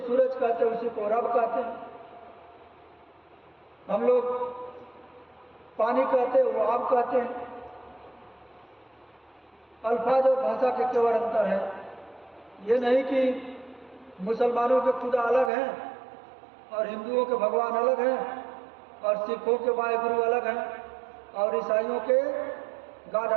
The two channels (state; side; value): drops out; left; at 15.5 s